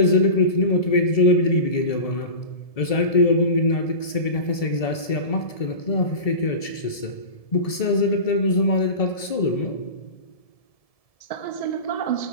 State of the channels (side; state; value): right; late; 1.7 ms